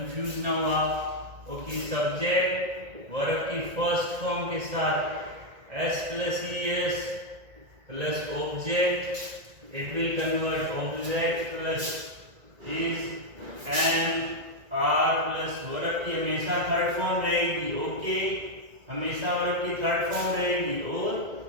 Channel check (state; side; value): late; left; 1.9 ms